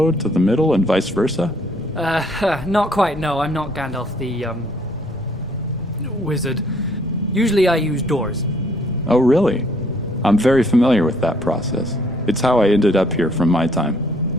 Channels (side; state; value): left; noise; rumble, 19 dB below the sound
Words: to the middle and vice versa? Not quite, no. I'm not Gandalf the, wizard. Usually I use doors. Oh, really? I'm very familiar with that process. It's how I ended up here from my time.